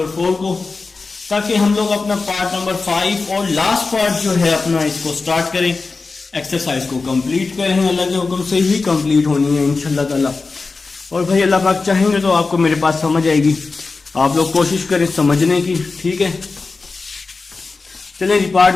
4 को, ताकि हम लोग अपना पार्ट नंबर 5 और लास्ट पार्ट जो है अपना इसको स्टार्ट करें, एक्सरसाइज को कंप्लीट करें। अल्लाह के हुक्म से ही कंप्लीट होनी है इंशाल्लाह ताला। और भाई अल्लाह पाक चाहेंगे तो आपको मेरे पास समझ आएगी। आप लोग कोशिश करें समझने की, ठीक है। चलिए जी पार्ट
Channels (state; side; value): quieter; right; 4.1 dB